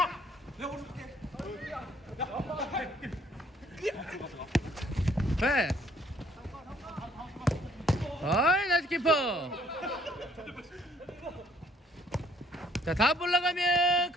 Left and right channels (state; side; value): normal; both; correlation 0.63